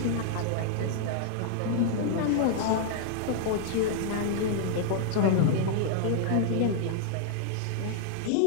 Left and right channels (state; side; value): different; both; correlation -0.01